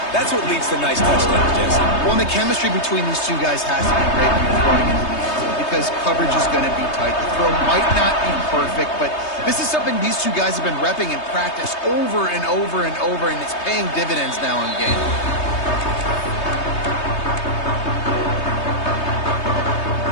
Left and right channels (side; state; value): right; late; 3.2 ms